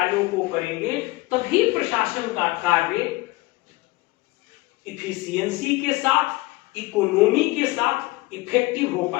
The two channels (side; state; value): right; quieter; 20.9 dB